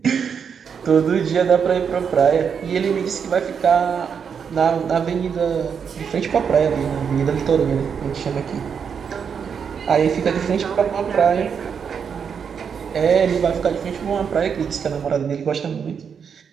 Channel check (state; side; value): quieter; left; 6.9 dB